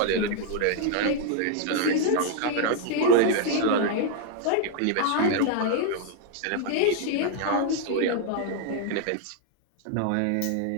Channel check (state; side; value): different; both; correlation 0.00